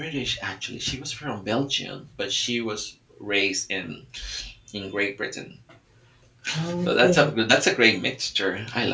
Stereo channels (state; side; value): identical; both; correlation 1.00